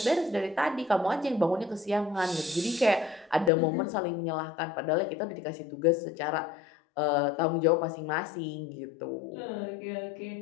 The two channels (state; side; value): drops out; right; at 3.5 s